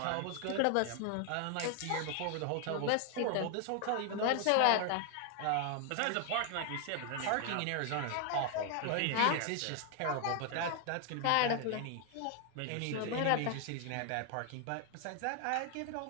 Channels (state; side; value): different; both; correlation 0.00